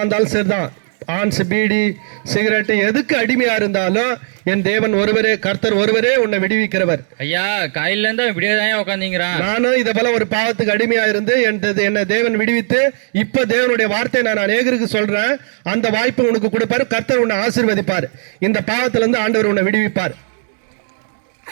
வந்தாலும் சரிதான். ஆன்ஸ், பீடி, சிகரெட் எதுக்கு அடிமையா இருந்தாலும் என் தேவன் ஒருவரே, கர்த்தர் ஒருவரே உன்னை விடுவிக்கிறவர். ஐயா காலையில இருந்தா இப்படியே தான் உட்காந்துங்கிறான். நானும் இதை போல ஒரு பாவத்துக்கு அடிமையா இருந்து என்னை தேவன் விடுவித்து இப்ப தேவனுடைய வார்த்தையை நான் அநேகருக்கு சொல்றேன். அந்த வாய்ப்பு உனக்கு கொடுப்பாரு. கர்த்தர் உன்னை ஆசீர்வதிப்பார். இந்த பாவத்துல இருந்து ஆண்டவர் உன்னை விடுவிப்பார்.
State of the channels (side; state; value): left; silent; 57 dB below the other